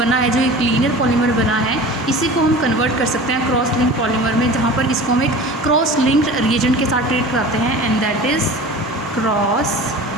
है, जो एक लीनियर पॉलीमर बना है, इसी को हम कन्वर्ट कर सकते हैं क्रॉस लिंक पॉलीमर में, जहाँ पर इसको हम एक क्रॉस लिंक्ड रिएजेंट के साथ ट्रीट कराते हैं, and that is cross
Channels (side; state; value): both; normal; correlation 0.38